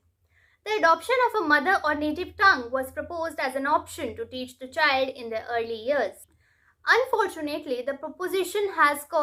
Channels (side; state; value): both; identical; correlation 1.00